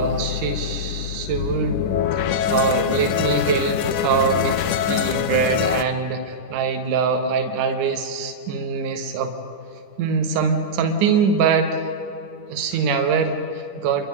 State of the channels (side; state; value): left; late; 10 ms